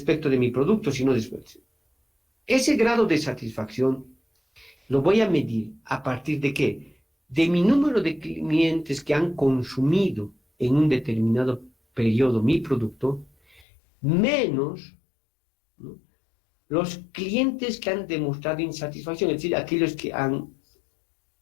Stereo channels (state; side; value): drops out; right; at 13.7 s